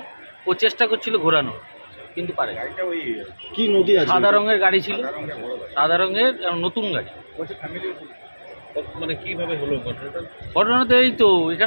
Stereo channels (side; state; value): both; inverted; correlation -1.00